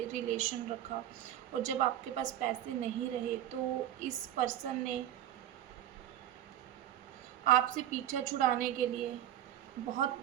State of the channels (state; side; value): quieter; left; 11.8 dB